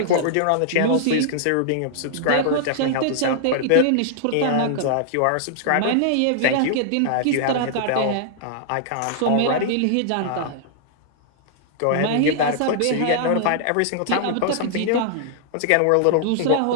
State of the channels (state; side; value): different; both; correlation -0.01